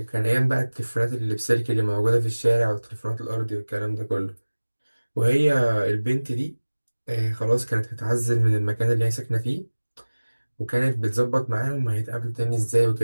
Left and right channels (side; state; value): both; inverted; correlation -1.00